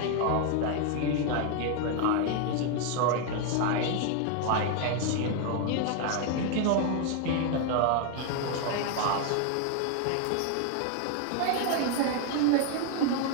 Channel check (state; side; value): different; both; correlation 0.00